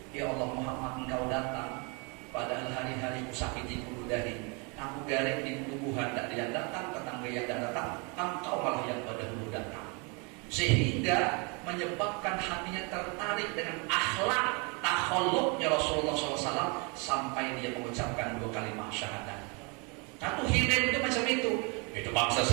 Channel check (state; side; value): quieter; left; 32.0 dB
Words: ya Allah Muhammad, engkau datang, padahal hari-hari ku sakiti kuludahi, aku garing di tubuhan, tak dia datang, tetangga yang datang, engkau malah yang dahulu datang. Sehingga menyebabkan hatinya tertarik dengan akhlak takhalluknya Rasulullah SAW sampai dia mengucapkan 2 kalimat syahadat. Satu hilim itu macam itu. Itu bangsa